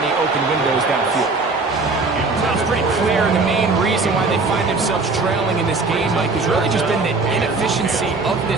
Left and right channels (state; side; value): quieter; left; 3.8 dB